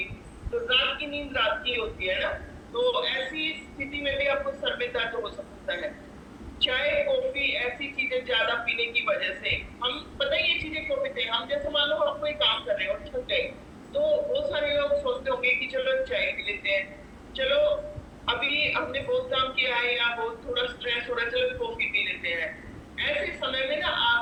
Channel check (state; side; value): identical; both; correlation 1.00